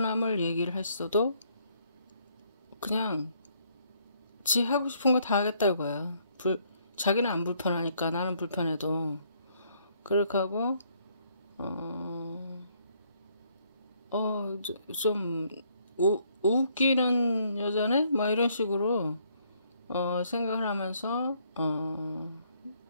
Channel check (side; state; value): both; inverted; correlation -0.68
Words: 얘기를 했어도 그냥 지 하고 싶은 거 다 하겠다 이거야. 자기는 안 불편하니까 나는 불편해도 그렇게 하고 좀 웃기는 여자네? 막 이런 식으로 생각을 하면서